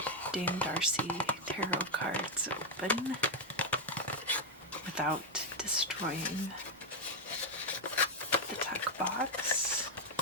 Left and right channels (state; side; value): normal; both; correlation 0.02